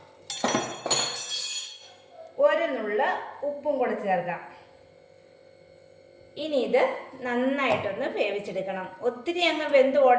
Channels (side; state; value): both; identical; correlation 1.00